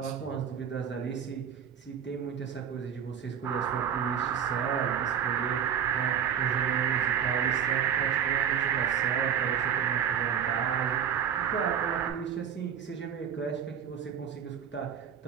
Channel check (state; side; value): quieter; left; 8.3 dB